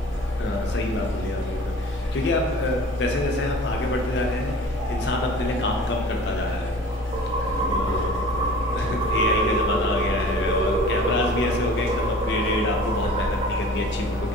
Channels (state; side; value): normal; both; correlation 0.44